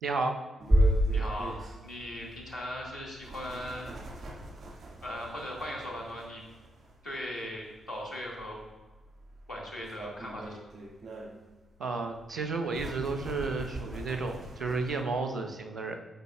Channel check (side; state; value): both; normal; correlation 0.79